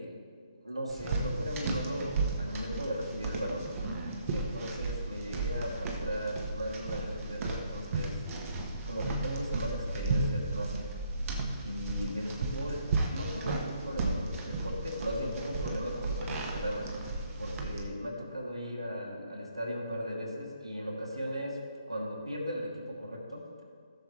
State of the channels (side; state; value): both; inverted; correlation -0.70